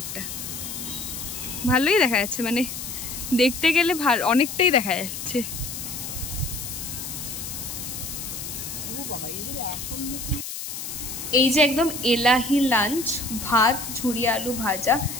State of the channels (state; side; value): noise; left; hiss, 7 dB below the sound